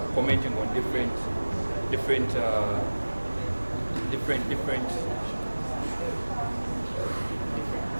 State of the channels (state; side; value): inverted; both; correlation -1.00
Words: commenting on different